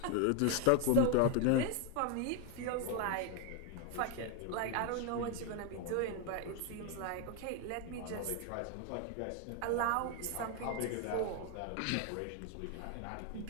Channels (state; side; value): different; both; correlation 0.01